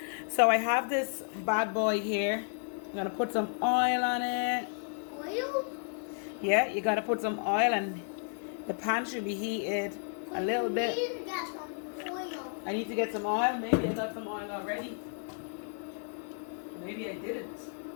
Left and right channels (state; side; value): silent; right; 56 dB below the other